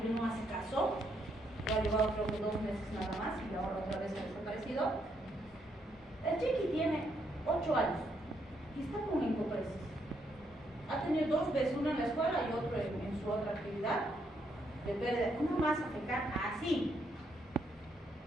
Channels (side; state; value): both; normal; correlation 0.75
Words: no hace caso. Lo ha llevado creo que 2 meses nada más y ahora otra vez ha desaparecido. El chiqui tiene 8 años y está con encopresis. Ha tenido 2 veces, una en la escuela y otro en su otra actividad, de pérdida, una masa fecal así.